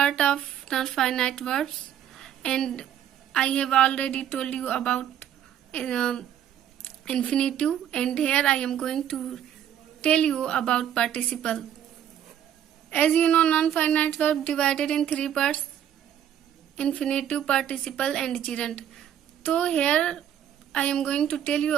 of non-finite verbs, and I have already told you about infinitive, and here I am going to tell you about participle. As you know, non-finite verb divided in three parts: infinitive, participle and gerund. So here I am going to tell you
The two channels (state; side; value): quieter; left; 10.1 dB